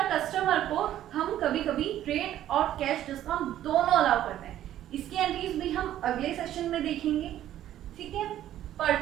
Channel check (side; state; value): left; quieter; 12.3 dB